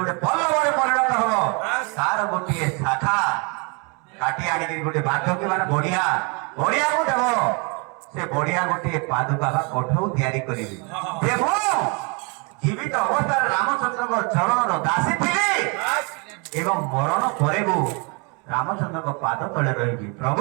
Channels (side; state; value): left; quieter; 32.8 dB